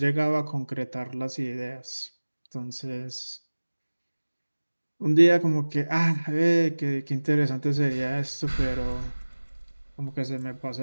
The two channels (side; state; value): both; inverted; correlation -1.00